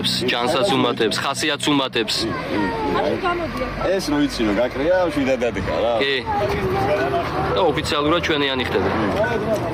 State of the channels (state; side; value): identical; both; correlation 1.00